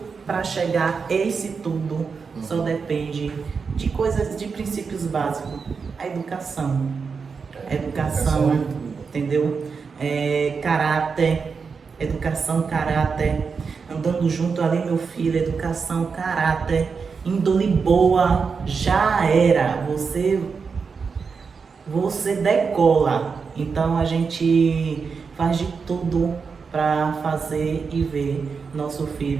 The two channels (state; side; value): quieter; left; 5.4 dB